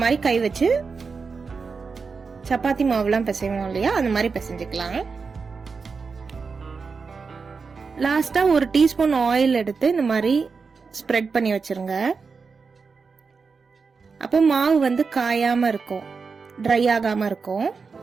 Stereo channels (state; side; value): quieter; left; 5.0 dB